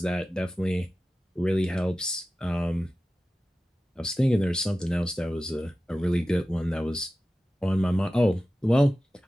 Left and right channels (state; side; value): normal; both; correlation 0.94